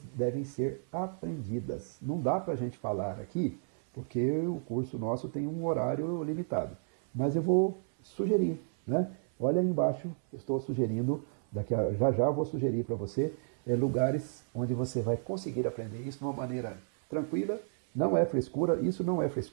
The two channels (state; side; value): silent; left; 56 dB below the other